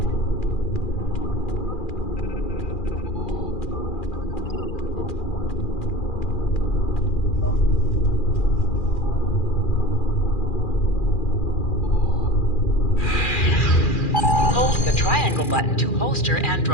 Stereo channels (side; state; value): right; late; 2.4 ms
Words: Hold the triangle button to holster and